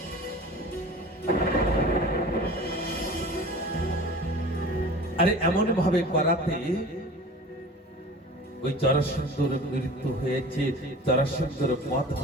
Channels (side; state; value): both; normal; correlation 0.40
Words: আরে এমন ভাবে করাতে ওই জরাসন্ধর মৃত্যু হয়েছে, জরাসন্ধর বধ